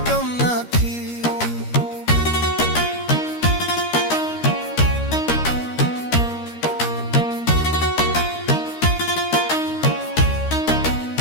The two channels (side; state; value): right; late; 13 ms